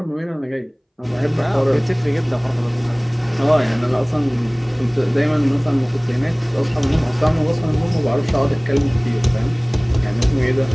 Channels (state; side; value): identical; both; correlation 1.00